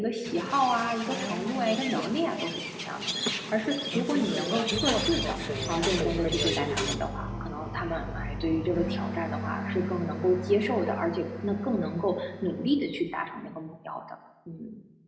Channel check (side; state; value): both; identical; correlation 1.00